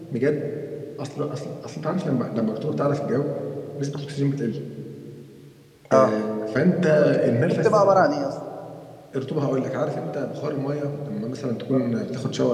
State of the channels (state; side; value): identical; both; correlation 1.00